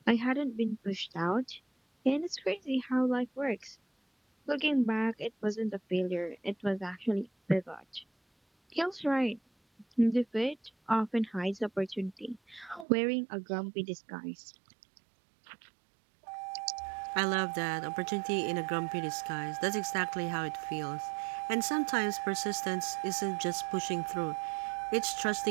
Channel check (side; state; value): left; drops out; at 12.9 s